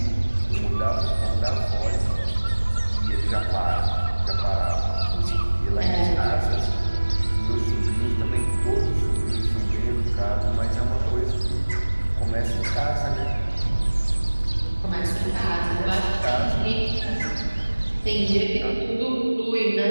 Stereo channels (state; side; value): inverted; both; correlation -1.00